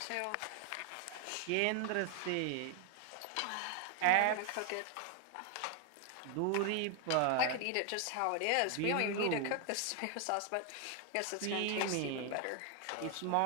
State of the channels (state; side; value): different; both; correlation 0.00